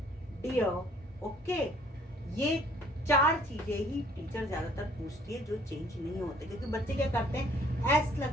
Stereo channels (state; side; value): normal; both; correlation 0.59